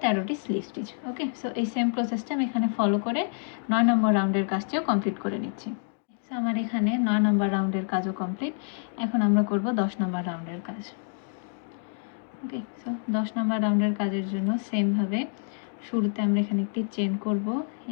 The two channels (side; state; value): right; silent; 60 dB below the other